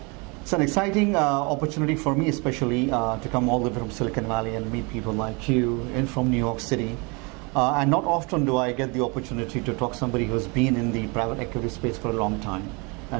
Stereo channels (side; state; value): left; quieter; 29.9 dB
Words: It's an exciting opportunity for me, especially to come all the way from Silicon Valley and meet people like you and from New York City. And not often do I get the opportunity to talk to somebody who's been in the private equity space for a long time.